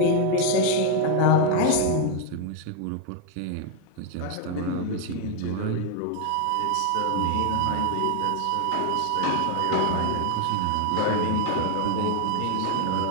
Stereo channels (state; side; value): different; both; correlation 0.01